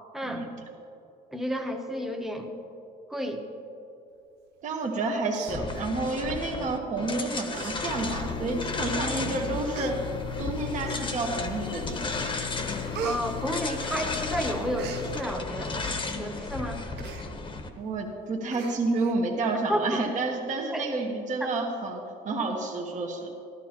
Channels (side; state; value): both; normal; correlation 0.48